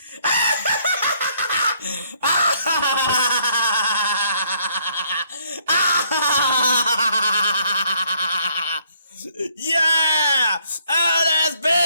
Yeah! Oh, there's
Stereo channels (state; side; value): inverted; both; correlation -0.67